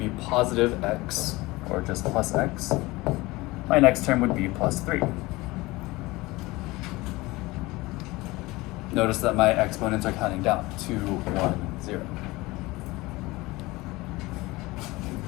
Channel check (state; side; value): quieter; right; 21.2 dB